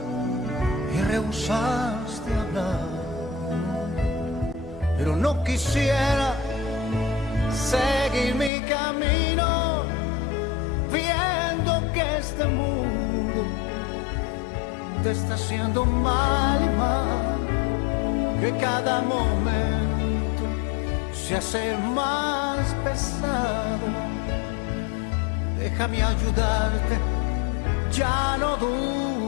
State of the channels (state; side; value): drops out; right; at 8.5 s